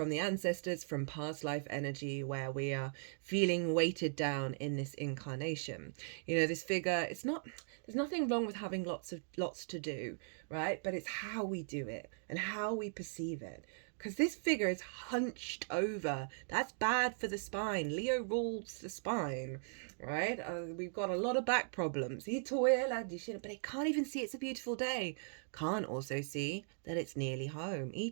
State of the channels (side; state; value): left; silent; digital silence